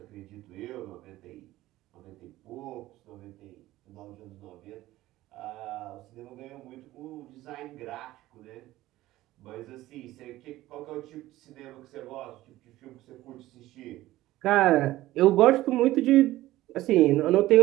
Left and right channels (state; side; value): quieter; left; 16.2 dB